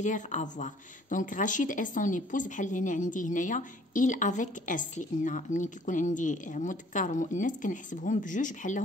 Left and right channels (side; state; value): both; normal; correlation 0.57